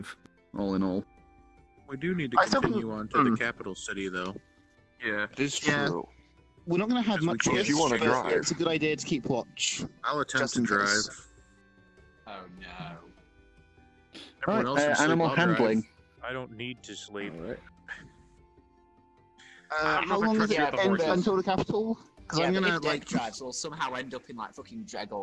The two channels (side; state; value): both; identical; correlation 1.00